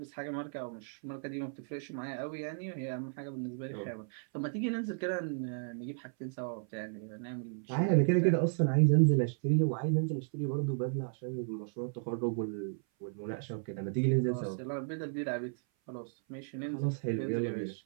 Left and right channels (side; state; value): left; silent; 55 dB below the other